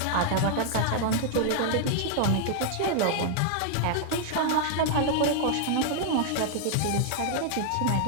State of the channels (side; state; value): both; different; correlation 0.00